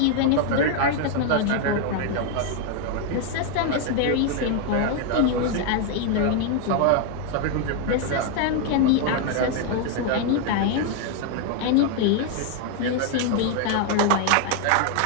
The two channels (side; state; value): both; different; correlation 0.01